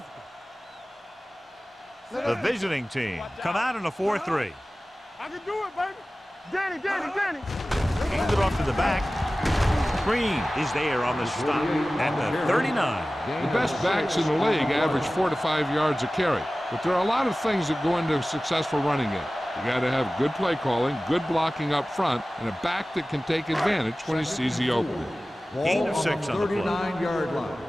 The visiting team come out in a 4-3. I can do it, baby. Danny. Hand it off to the back. Green is there on the stop at the 39. The best backs in the league average 4 to 5 yards a carry, but there are a lot of things that go into a successful running game. You got to have good play calling, good blocking up front, and a back that can take advantage when he sees the opening. Gain of 6 on the play. 39-yard line.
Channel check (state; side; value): normal; both; correlation 0.97